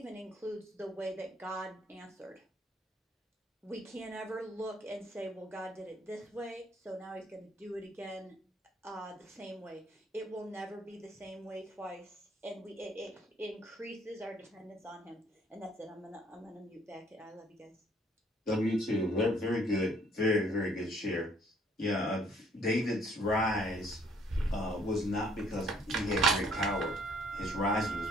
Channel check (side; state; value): both; normal; correlation 0.63